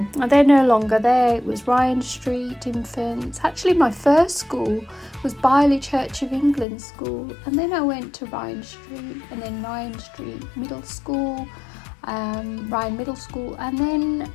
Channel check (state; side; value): drops out; right; at 6.7 s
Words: they're no longer there. It was Ryan Street Infants. Actually, my first school was Byerley Church of England School. And then I went to Ryan Street and then Ryan Street Middle School, Ryan Middle School. And then